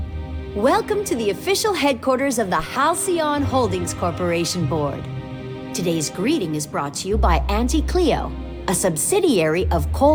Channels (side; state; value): both; identical; correlation 1.00